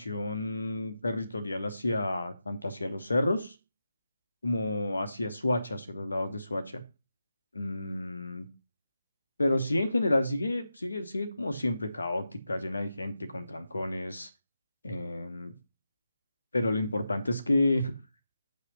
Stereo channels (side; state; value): both; inverted; correlation -0.89